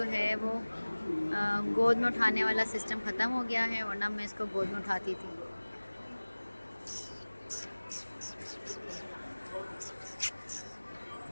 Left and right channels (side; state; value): both; inverted; correlation -1.00